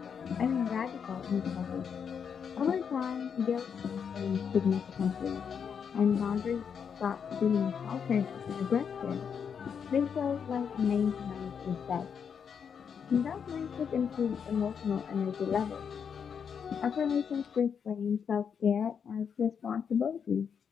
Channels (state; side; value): quieter; right; 7.0 dB